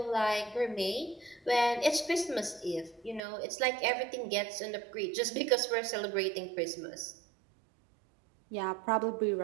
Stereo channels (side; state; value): left; drops out; at 3.2 s